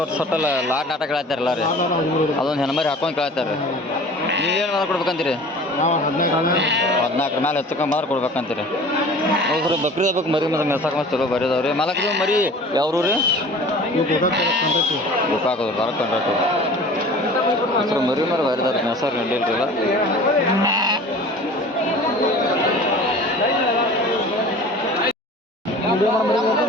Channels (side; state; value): both; normal; correlation 0.43